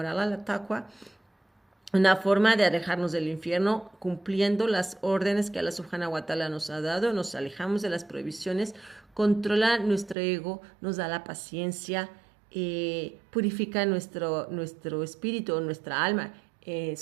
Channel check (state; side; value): drops out; left; at 10.2 s